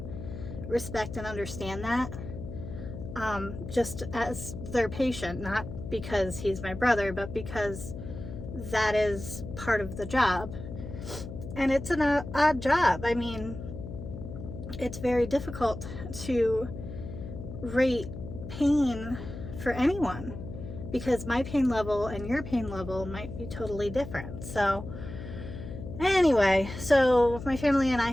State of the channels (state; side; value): noise; left; hum, 10 dB below the sound